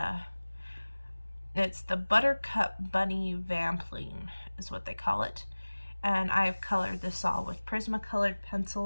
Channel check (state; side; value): inverted; both; correlation -1.00